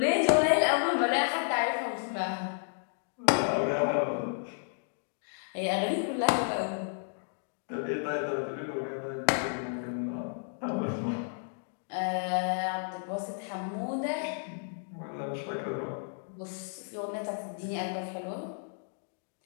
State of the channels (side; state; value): right; silent; digital silence